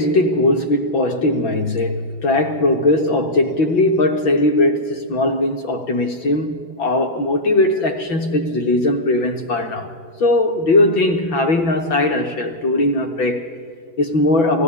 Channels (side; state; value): right; late; 6.0 ms